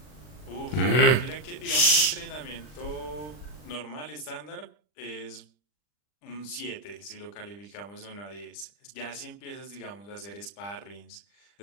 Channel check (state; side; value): late; right; 40 ms